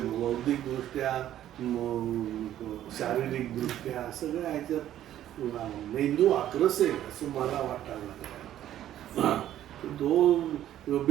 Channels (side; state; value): left; quieter; 12.1 dB